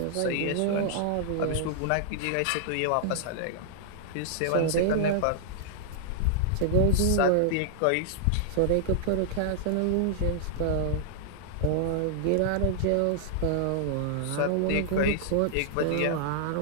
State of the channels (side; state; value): both; different; correlation -0.01